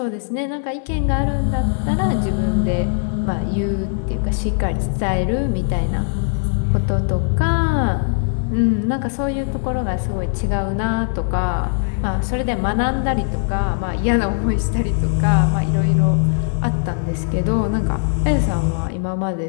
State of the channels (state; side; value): silent; right; 59 dB below the other